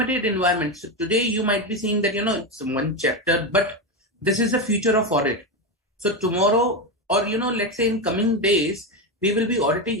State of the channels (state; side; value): normal; both; correlation 0.12